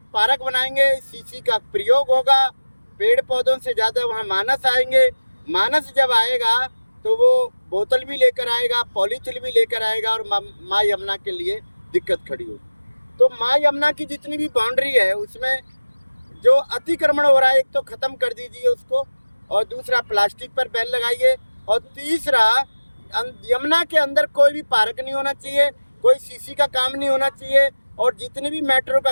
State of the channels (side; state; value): both; inverted; correlation -1.00